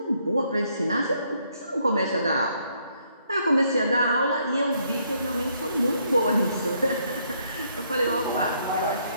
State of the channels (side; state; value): both; inverted; correlation -0.71